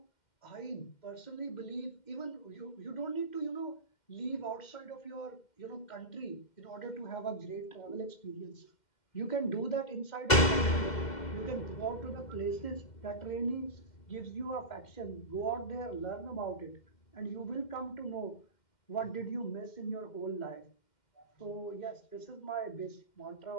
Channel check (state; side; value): late; right; 2.0 ms